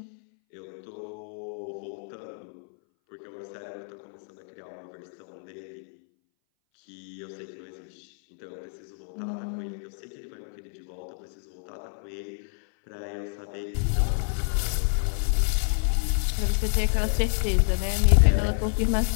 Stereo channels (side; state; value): right; silent; 59 dB below the other